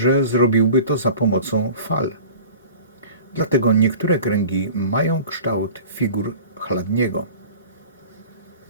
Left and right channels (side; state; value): both; inverted; correlation -0.41